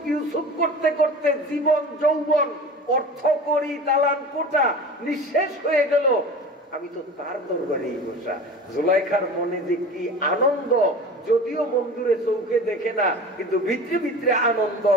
ইউসুফ করতে করতে জীবন যৌবন অর্থ করি দালান কোটা নিঃশেষ হয়ে গেল, আমি তো তার দরবারেই বসা। জুলাইখার মনে যে কি আনন্দ, যদিও বন্ধুরে চৌকে দেখে না, কিন্তু ভিতরে ভিতরে আনন্দ।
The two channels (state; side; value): normal; both; correlation 0.36